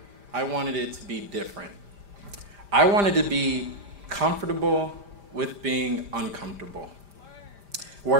I wanted it to be different. I wanted to be comfortable with being uncomfortable.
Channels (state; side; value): late; left; 5.0 ms